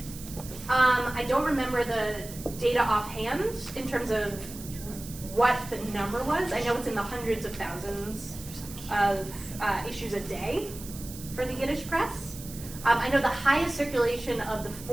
I don't remember the data offhand in terms of what the number was. I know it's in the hundreds of thousands of issues a day for the Yiddish press. I know the highest circulation of the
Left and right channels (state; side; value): noise; right; hiss, 14 dB below the sound